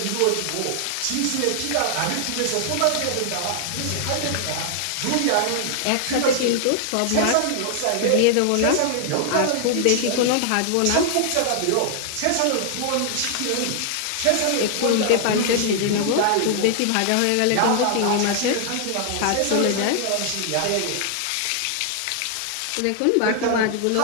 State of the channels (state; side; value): different; both; correlation 0.00